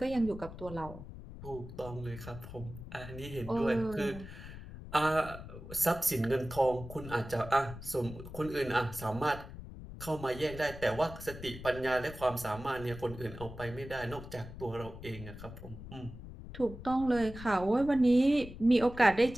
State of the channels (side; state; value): left; noise; rumble, 13 dB below the sound